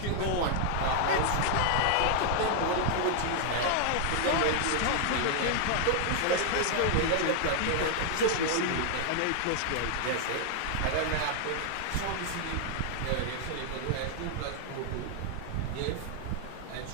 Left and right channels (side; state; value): both; different; correlation 0.00